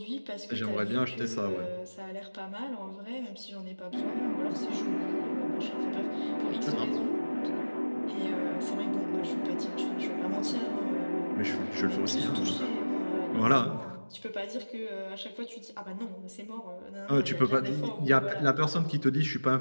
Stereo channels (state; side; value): inverted; both; correlation -1.00